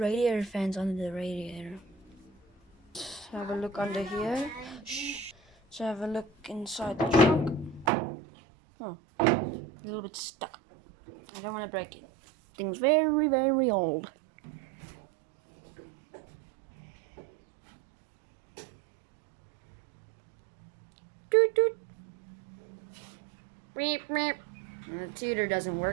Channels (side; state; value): left; drops out; at 7.9 s